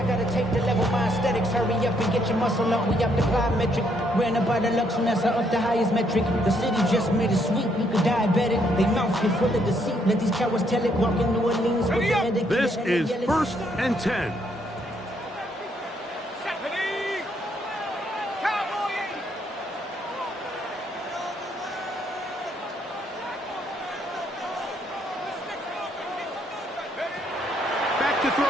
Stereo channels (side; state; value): both; normal; correlation 0.71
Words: gotta take to level my aesthetics? Hurry up and get your muscle up. We up the plyometric. Ran up by the luxury, that's up the highest metric. The city just made it sweet. You could diabetic. They mouth get full of deceit. Let these cowards tell it. Walk in New Orleans. This is 1st and 10. To